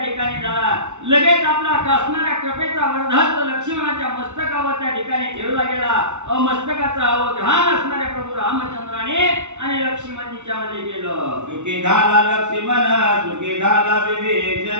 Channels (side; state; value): left; late; 0.83 ms